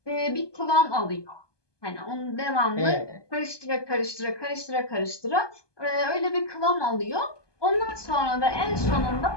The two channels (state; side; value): late; right; 1.2 ms